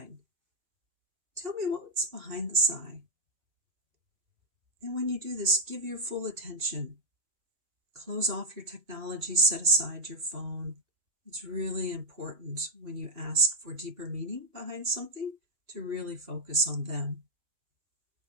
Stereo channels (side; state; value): left; late; 2.7 ms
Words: Tell me what's behind the sigh. And when you do this, give your full attention. Close off your technology, set aside your phone. It's really important when you ask for deeper meaning behind something to really focus on them.